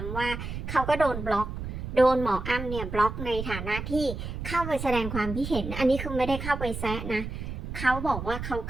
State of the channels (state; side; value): noise; right; rumble, 6 dB below the sound